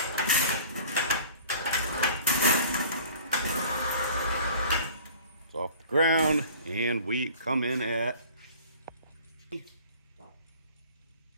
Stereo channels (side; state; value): both; inverted; correlation -0.47